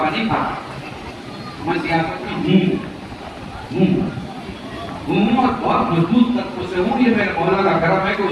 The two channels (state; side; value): identical; both; correlation 1.00